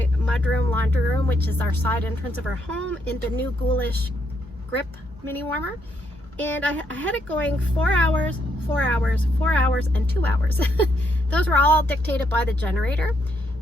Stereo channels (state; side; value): normal; both; correlation 0.75